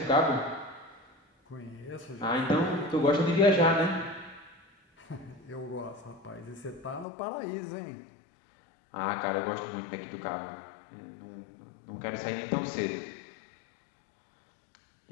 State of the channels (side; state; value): right; drops out; at 7.1 s